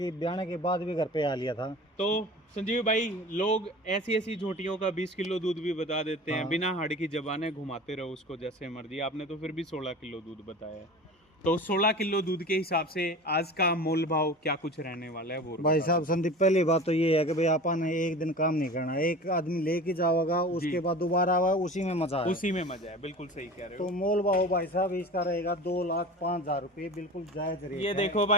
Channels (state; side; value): normal; both; correlation 0.36